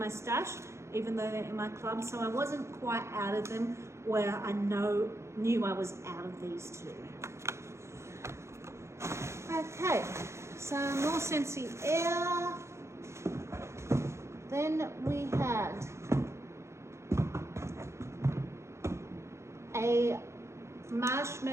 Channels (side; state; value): left; late; 0.13 ms